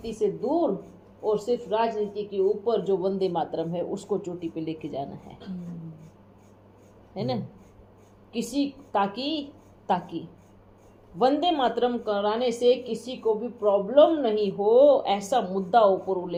से दूर और सिर्फ राजनीति के ऊपर जो वंदे मातरम है उसको चोटी पे लेके जाना है ना। किसी ताकि वंदे मातरम कराने से किसी को भी प्रॉब्लम नहीं हो, ऐसा मुद्दा ऊपर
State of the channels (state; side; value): identical; both; correlation 1.00